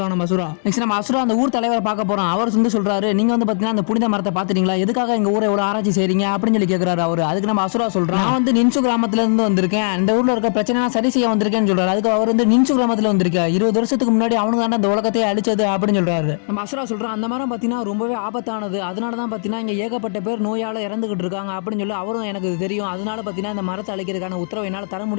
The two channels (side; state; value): right; silent; digital silence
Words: நம்ம அசுரா. நெக்ஸ்ட் நம்ம அசுரா அந்த ஊர் தலைவரை பார்க்க போகிறோம். அவர் வந்து சொல்கிறாரு, நீங்கள் வந்து பார்த்தீங்கன்னா அந்த புனித மரத்தை பார்த்துட்டீங்களா, எதுக்காக எங்கள் ஊரை எவ்வளோ ஆராய்ச்சி செய்றீங்க அப்படின்னு சொல்லி கேட்குறாரு அவர். அதுக்கு நம்ம அசுரா சொல்கிறோம், நான் வந்து நின்சு கிராமத்துலேருந்து வந்திருக்கேன், இந்த ஊரில் இருக்க பிரச்சனை சரி செய்ய வந்திருக்கேன்னு சொல்கிறாரு. அதுக்கு அவர் வந்து நின்சு கிராமத்தில் வந்திருக்கேன், 20 வருஷத்துக்கு முன்னாடி அவனுக்கு தான் இந்த உலகத்தையே அழிச்சது அப்படின்னு சொல்கிறாரு. நம்ம அசுரா சொல்கிறோம், அந்த மரம் பார்த்தீங்கன்னா ரொம்பவே ஆபத்தானது, அதனால தான் பார்த்தீங்கன்னா இங்கே ஏகப்பட்ட பேர் நோயால் இறந்துகிட்டு இருக்காங்க அப்படின்னு சொல்லி அவரும் எனக்கு தெரியும். அதனால பார்த்தீங்கன்னா இந்த மரத்தை அழிக்கிறதுக்கான உத்தரவை என்னால் தர